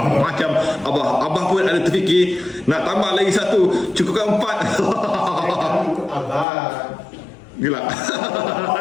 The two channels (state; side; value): drops out; right; at 6.5 s